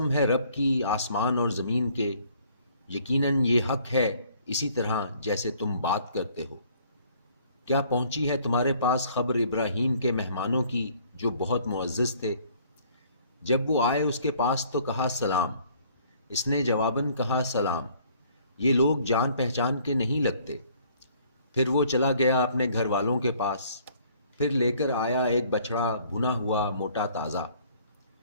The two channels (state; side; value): inverted; both; correlation -0.59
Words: ہے رب کی آسمان اور زمین کے، یقیناً یہ حق ہے اسی طرح جیسے تم بات کرتے ہو۔ کیا پہنچی ہے تمہارے پاس خبر ابراہیم کے مہمانوں کی جو بہت معزز تھے؟ جب وہ آئے اس کے پاس تو کہا سلام، اس نے جواباً کہا سلام، یہ لوگ جان پہچان کے نہیں لگتے۔ پھر وہ چلا گیا اپنے گھر والوں کے پاس، پھر لے کر آیا ایک بچڑا بھنا ہوا موٹا تازہ،